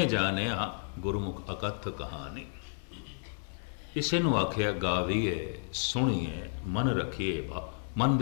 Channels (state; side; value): silent; right; 56 dB below the other